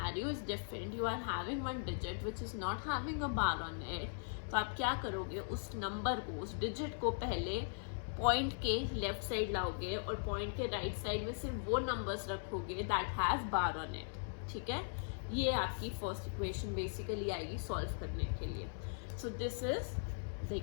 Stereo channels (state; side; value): silent; right; digital silence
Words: is different. You are having one digit which is not having a bar on it. तो आप क्या करोगे, उस नंबर को, उस डिजिट को पहले पॉइंट के लेफ्ट साइड लाओगे और पॉइंट के राइट साइड में सिर्फ वो नंबर्स रखोगे that have bar on it. ठीक है, ये आपकी फर्स्ट इक्वेशन बेसिकली आएगी सॉल्व करने के लिए. सो this is the